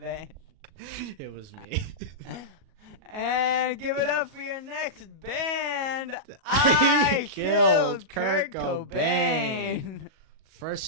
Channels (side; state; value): left; late; 37 ms